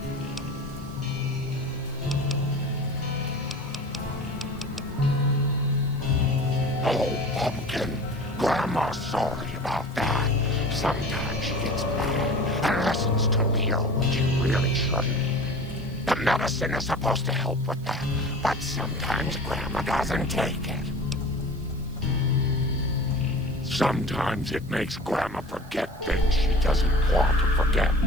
Oh, Pumpkin. Grandma's sorry about that. Sometimes she gets mad and listens to Leo when she really shouldn't. The medicine is supposed to help with that, but sometimes Grandma doesn't take it. Sometimes it makes Grandma forget things she doesn't want to forget,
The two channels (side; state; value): right; noise; hiss, 26 dB below the sound